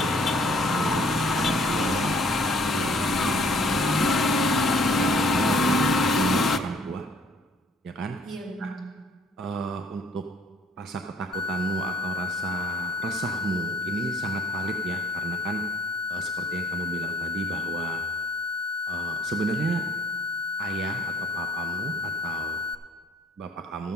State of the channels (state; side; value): normal; both; correlation 0.58